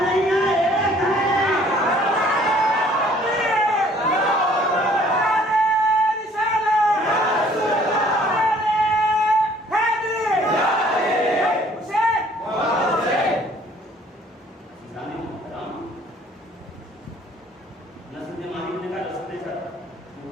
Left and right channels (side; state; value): both; normal; correlation 0.57